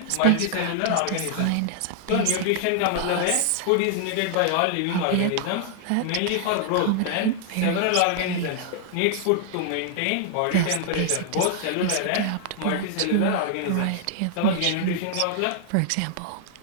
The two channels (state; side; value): different; both; correlation -0.01